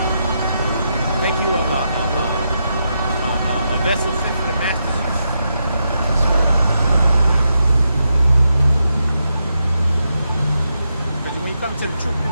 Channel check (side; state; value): both; inverted; correlation -0.84